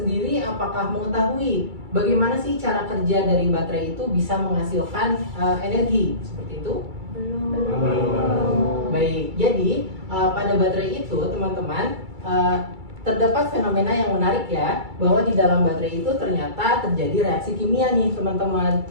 apakah mengetahui bagaimana sih cara kerja dari baterai itu bisa menghasilkan energi? Seperti itu? Belum. Baik, jadi pada baterai itu teman-teman terdapat fenomena yang menarik ya, bahwa di dalam baterai itu ternyata terjadi reaksi kimia nih teman-teman.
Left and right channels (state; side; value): late; left; 2.3 ms